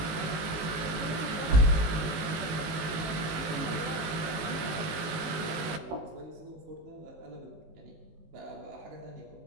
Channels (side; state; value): left; late; 19 ms